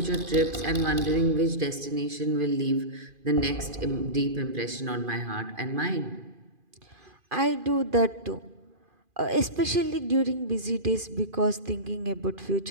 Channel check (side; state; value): left; late; 2.5 ms